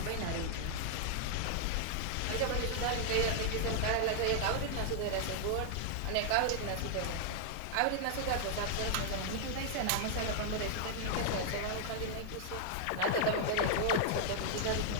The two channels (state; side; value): different; both; correlation -0.01